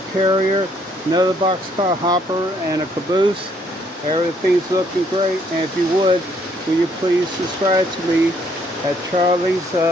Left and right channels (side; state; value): both; normal; correlation 0.67